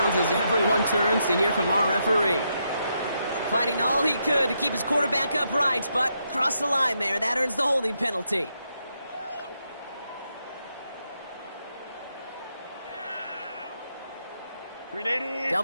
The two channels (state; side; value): inverted; both; correlation -0.80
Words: as everyone turns to hear from our referee. Fighting all he could to keep his quarterback upright, but crossed the line there. That earns the holding penalty.